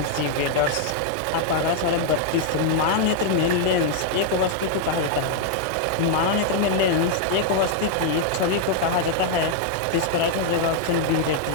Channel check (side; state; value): both; different; correlation 0.00